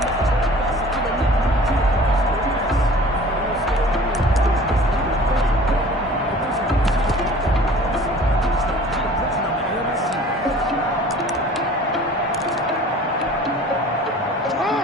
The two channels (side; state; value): both; normal; correlation 0.46